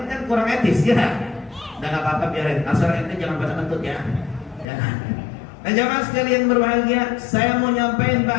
kan kurang etis ya. Udah nggak apa-apa, biarin. Asal ente jangan pada kentut ya. Jangan. Nah jamaah sekalian berbahagia, saya mau nyampein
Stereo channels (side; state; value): right; drops out; at 4.7 s